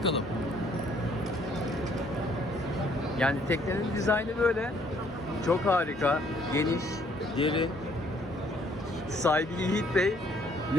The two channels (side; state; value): both; normal; correlation 0.64